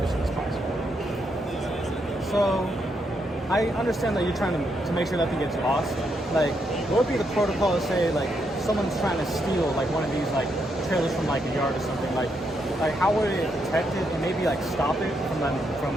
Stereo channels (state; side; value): normal; both; correlation 0.79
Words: as possible. So I understand that you're trying to make sure nothing gets lost. Like, what would be the protocol to say, like, someone's trying to steal, like, one of these, like, trailers from, like, a yard or something? Like how would it detect it and maybe, like, stop it from